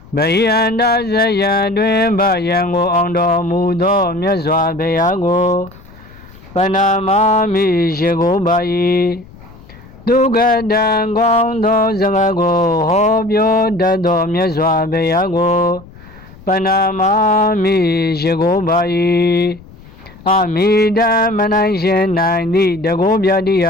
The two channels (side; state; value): left; noise; rumble, 21 dB below the sound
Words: ဗိယန္တဇယံတွင်ဗယံကိုအောင်တော်မူသောမြတ်စွာဘုရားကိုပနာမာမိရှိကိုပါ၏ဒုက္ခတံကောင်းသောစကားကိုဟောပြောတတ်သောမြတ်စွာဘုရားကိုပနာမာမိရှိကိုပါ၏အမိတံမနိုင်ရှင်နိုင်သည့်တကောပြတိယ